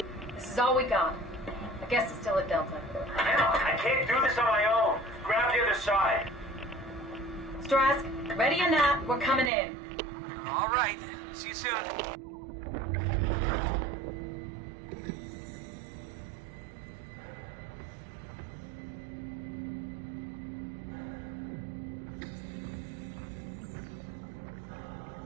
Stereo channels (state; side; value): drops out; left; at 9.5 s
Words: This is all we got. I guess it's still at Delta. Man, I can't do this on my own. Grab the other side. Strask. Ready or not, we're coming in. All right. See you soon.